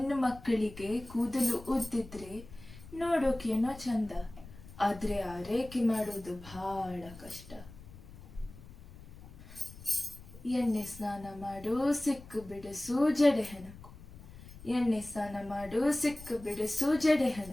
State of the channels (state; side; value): noise; left; rumble, 17 dB below the sound